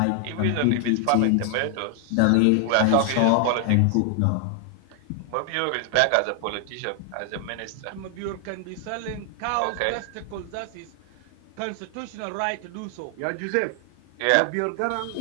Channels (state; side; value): different; both; correlation 0.00